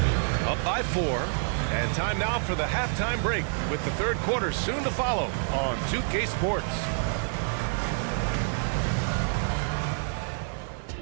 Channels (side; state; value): left; silent; 60 dB below the other